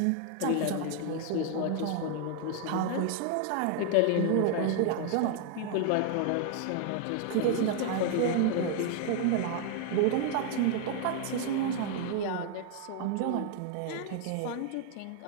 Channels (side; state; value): both; different; correlation 0.00